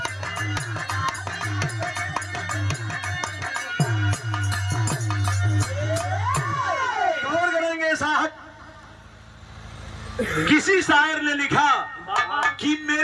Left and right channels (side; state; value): both; identical; correlation 1.00